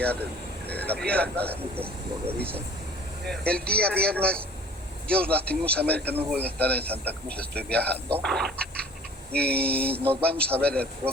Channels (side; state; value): both; normal; correlation 0.49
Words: la presentación, lo revisen. El día viernes, yo lastimosamente no voy a estar en Santa Cruz, estoy viajando. Y nos vamos a ver el